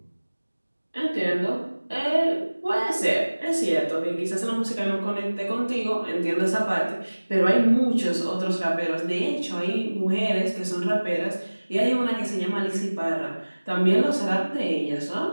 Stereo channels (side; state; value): both; inverted; correlation -1.00